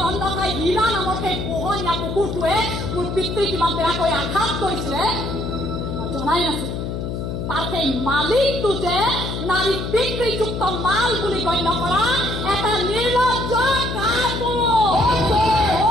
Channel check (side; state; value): left; noise; hum, 4 dB below the sound